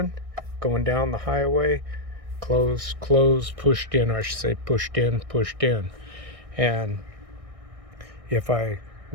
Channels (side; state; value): left; late; 1.6 ms